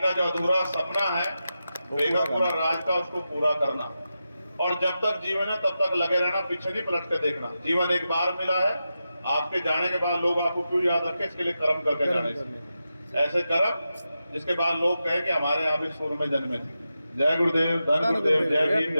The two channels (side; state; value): both; inverted; correlation -0.90